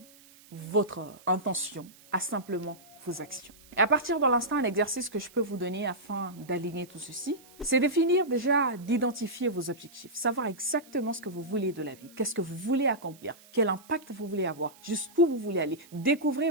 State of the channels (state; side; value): noise; right; hiss, 24 dB below the sound